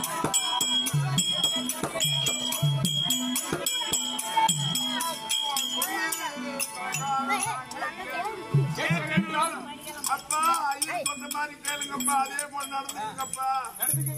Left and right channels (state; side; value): identical; both; correlation 1.00